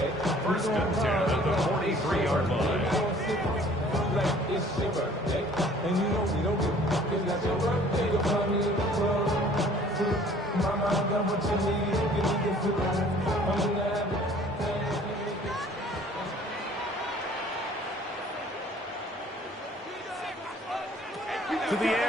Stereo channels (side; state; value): both; normal; correlation 0.54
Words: 1st and 10 at the 43-yard line. To the